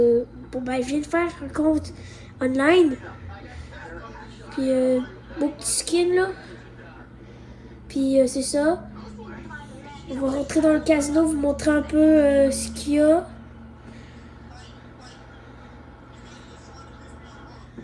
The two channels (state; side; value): identical; both; correlation 1.00